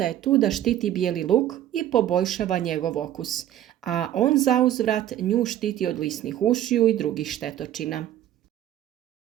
je tu da štiti bijeli luk i poboljšava njegov okus, a on zauzvrat nju štiti od lisnih ušiju i drugih štetočina.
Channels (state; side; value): quieter; left; 12.0 dB